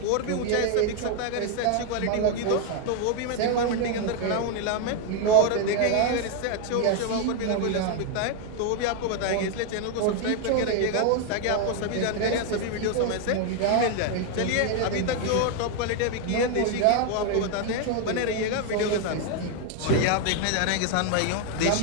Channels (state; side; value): different; both; correlation 0.01